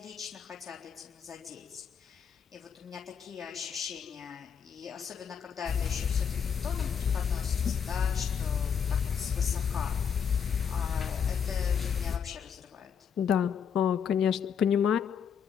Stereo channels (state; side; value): quieter; right; 7.3 dB